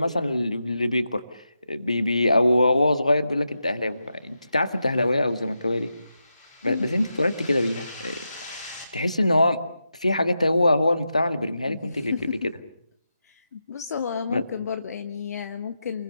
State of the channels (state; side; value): inverted; both; correlation -0.88